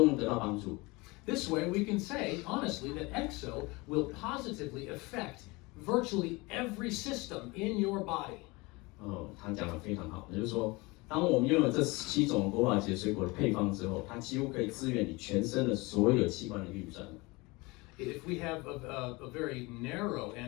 能得到帮助。This way, we can say honestly that EXO will positively affect virtually every system in your body. 他讲得非常好，也就是说，当我们拥有这17种国宝级水果的配方之后，它几乎可以支援你全身的所有器官的运转。If we have a very narrow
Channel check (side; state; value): right; quieter; 24.5 dB